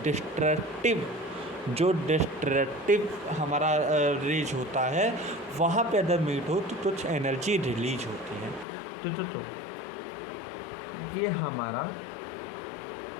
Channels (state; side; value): drops out; right; at 8.7 s